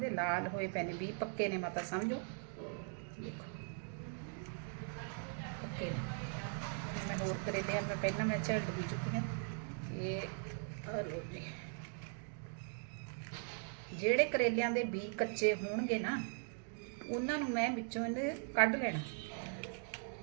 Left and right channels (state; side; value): silent; left; 51 dB below the other